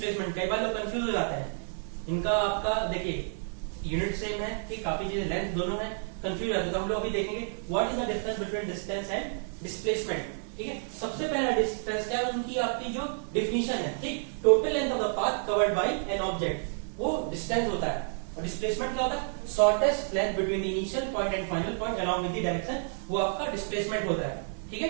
कई बार लोग कंफ्यूज हो जाते हैं, इनका आपका देखिए यूनिट सेम है, ठीक, काफी चीजें लेंथ दोनों है, कंफ्यूज जाते हैं। तो हम लोग अभी देखेंगे what is the difference between distance and displacement. ठीक है, सबसे पहला डिफरेंस क्या है, उनकी आपकी जो डिफिनीशन है, ठीक, total length of the path covered bye an object, वो डिस्टेंस होता है। और डिस्प्लेसमेंट क्या होता है, shortest length between initial point and final point along with the direction, वो आपका डिस्प्लेसमेंट होता है। ठीक है,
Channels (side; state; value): left; silent; digital silence